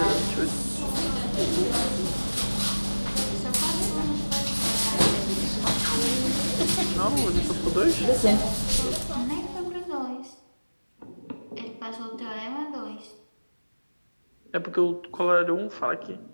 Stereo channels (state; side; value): inverted; both; correlation -1.00